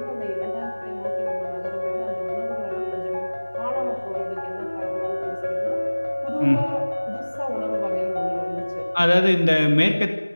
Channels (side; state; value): both; inverted; correlation -1.00